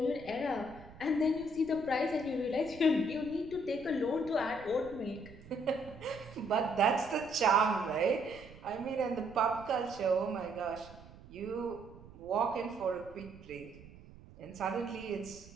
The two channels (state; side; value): noise; right; rumble, 19 dB below the sound